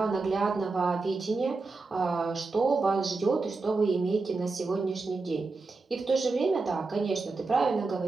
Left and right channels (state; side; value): quieter; left; 3.9 dB